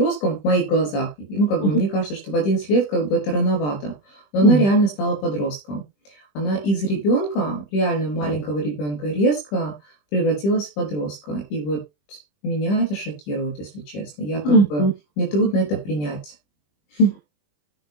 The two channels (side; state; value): right; late; 20 ms